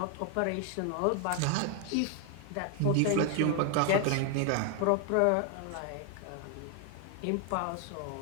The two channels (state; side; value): different; both; correlation 0.00